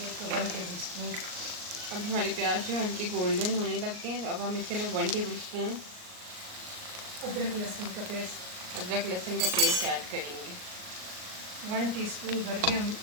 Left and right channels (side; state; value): left; late; 38 ms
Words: तो 1 टेबल स्पून। अब हमारे प्याज जो हल्के गोल्डन होने लग गए हैं, तो अब हम इसके अंदर 1 टेबल स्पून अदरक लहसुन का पेस्ट, अदरक लहसुन का पेस्ट ऐड करेंगे। 1 टीस्पून भर के हम